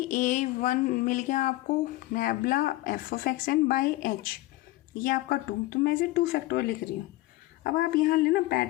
a1 मिल गया आपको nabla F of x N by H, ये आपका 2, तो मैं इसे 2 फैक्टोरियल लिख रही हूँ। अब आप यहाँ लेना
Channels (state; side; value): quieter; right; 18.2 dB